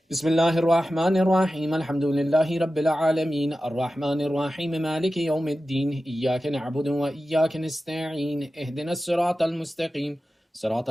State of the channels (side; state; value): both; normal; correlation 0.94